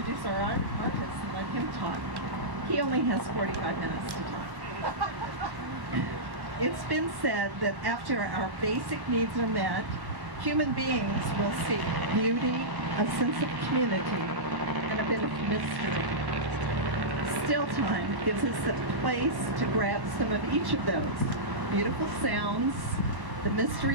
our artist and let him talk. He only has 45 minutes to talk. It's been said that after our basic needs are met, human beings will seek beauty, a sense of community, and a bit of mystery. Still Time gives us a place to grab some of each of those. Beautiful sounds, the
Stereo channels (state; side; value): late; left; 1.1 ms